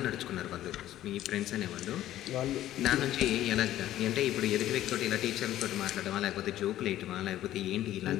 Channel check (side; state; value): right; quieter; 13.4 dB